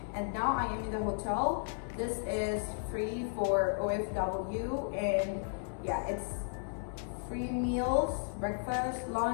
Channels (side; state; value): right; silent; 55 dB below the other